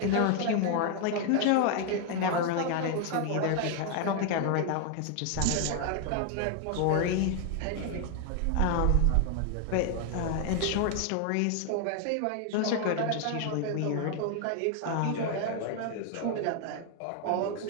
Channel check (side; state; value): both; different; correlation 0.00